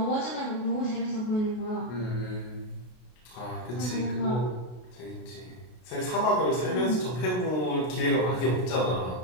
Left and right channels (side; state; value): right; late; 33 ms